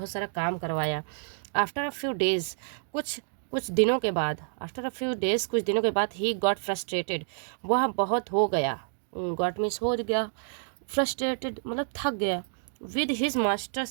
सारा काम करवाया। आफ्टर अ फ्यू डेज, कुछ कुछ दिनों के बाद, आफ्टर अ फ्यू डेज कुछ दिनों के बाद, ही गॉट फ्रस्ट्रेटेड, वह बहुत हो गया, गॉट मीन्स हो गया, फ्रस्ट्रेटेड मतलब थक गया। With his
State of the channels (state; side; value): silent; left; digital silence